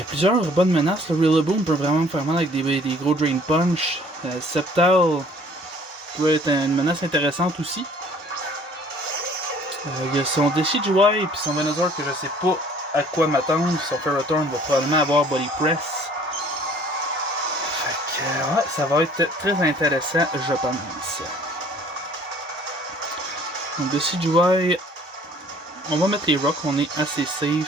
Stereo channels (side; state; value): both; normal; correlation 0.54